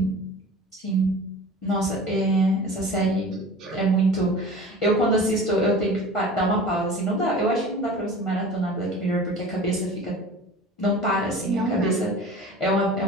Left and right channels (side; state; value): both; normal; correlation 0.39